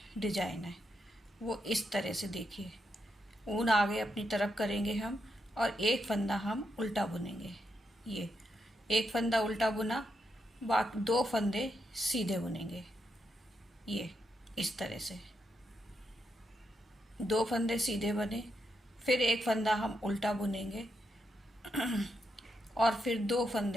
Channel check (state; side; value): normal; both; correlation 0.82